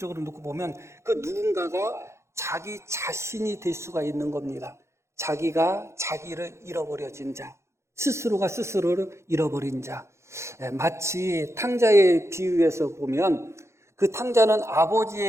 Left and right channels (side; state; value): left; late; 0.13 ms